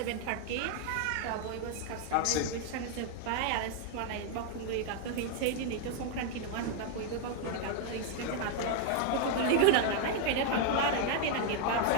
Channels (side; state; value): both; different; correlation 0.00